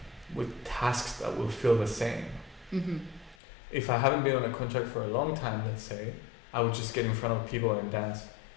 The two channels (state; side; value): drops out; right; at 3.4 s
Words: tasks that will feel the same. If I haven't been on a contract for a long time, let's say, I would just get in front of people and dance,